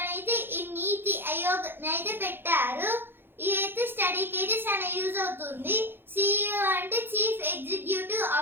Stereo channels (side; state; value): left; late; 0.10 ms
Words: అయితే ఈ నీతి ఆయోగ్ అయితే పెట్టారు. ఇదైతే స్టడీకి అయితే చాలా యూజ్ అవుతుంది. సిఇఓ అంటే చీఫ్ ఎగ్జిక్యూటివ్